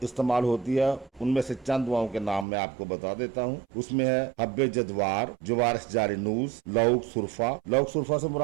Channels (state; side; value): drops out; left; at 2.5 s